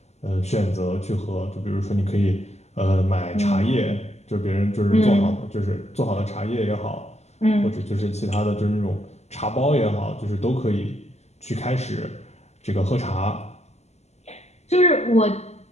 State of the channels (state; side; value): late; right; 0.32 ms